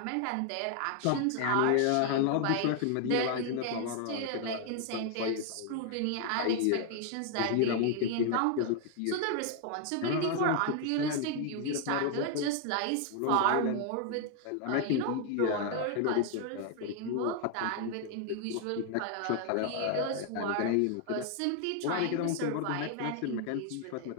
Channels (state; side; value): different; both; correlation 0.00